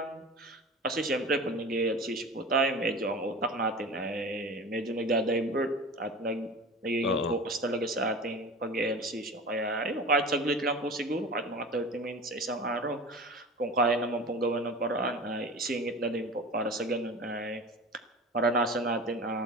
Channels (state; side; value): normal; both; correlation 0.34